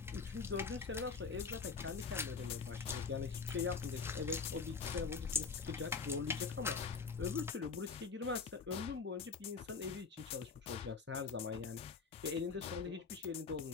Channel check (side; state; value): right; quieter; 4.9 dB